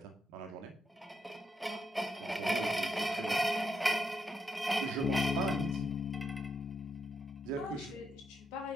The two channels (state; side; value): normal; both; correlation 0.81